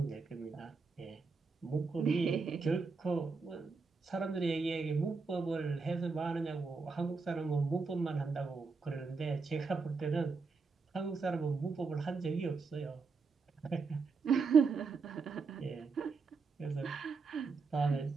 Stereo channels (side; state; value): left; quieter; 4.6 dB